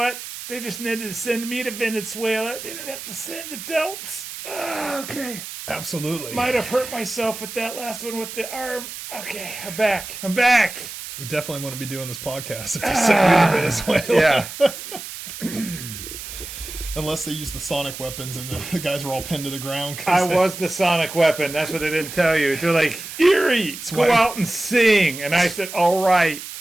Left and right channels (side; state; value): right; noise; hiss, 10 dB below the sound